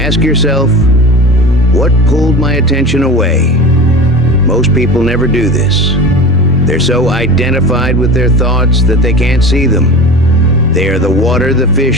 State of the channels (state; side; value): normal; both; correlation 0.33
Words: yourself, what pulled my attention away? Most people never do this. They're so identified with their thoughts that they can't see them. They are the water the